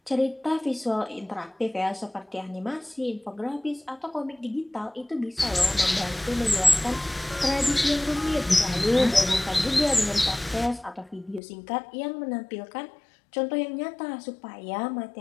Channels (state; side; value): drops out; right; at 11.4 s